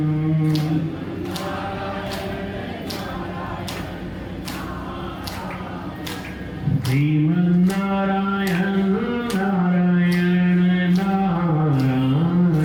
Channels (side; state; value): both; identical; correlation 1.00